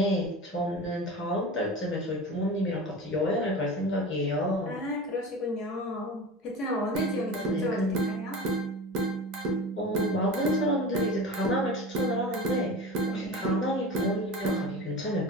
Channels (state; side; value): normal; both; correlation 0.32